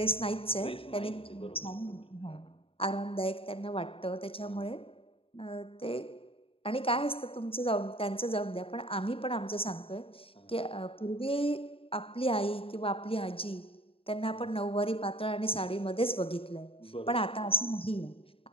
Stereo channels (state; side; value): late; right; 0.27 ms